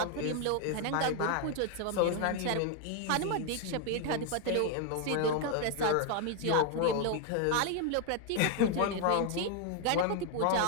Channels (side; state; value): both; different; correlation 0.00